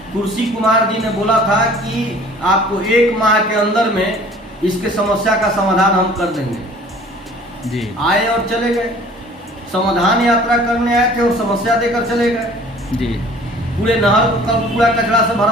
कुर्सी कुमार जी ने बोला था कि आपको 1 माह के अंदर में इसके समस्या का समाधान हम कर देंगे। जी। आए और चले गए, समाधान यात्रा करने आए थे और समस्या देकर चले गए। जी। पूरे नहर को कल कूड़ा कचरा से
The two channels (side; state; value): both; normal; correlation 0.50